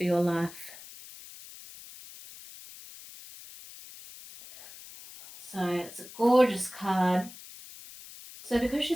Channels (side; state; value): left; noise; hiss, 17 dB below the sound